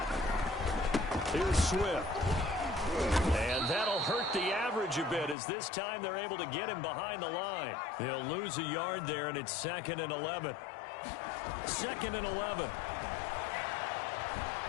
Here's Swift. And that'll hurt the average a bit as this time they're able to get him behind the line. He'll lose a yard there, and it's 2nd and 11. 2nd and 11.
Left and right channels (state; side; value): drops out; right; at 5.4 s